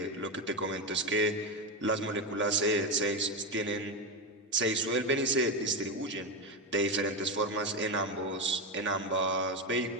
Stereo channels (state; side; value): normal; both; correlation 0.12